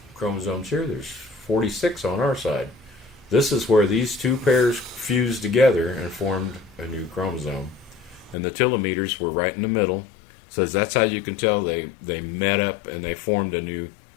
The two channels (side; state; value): right; drops out; at 8.3 s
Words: chromosomes here. There's 46 on our side. This is where these two pairs fused together and formed a new chromosome. And the telomeres were right in the middle. Says that's how you can tell they met up and they formed a new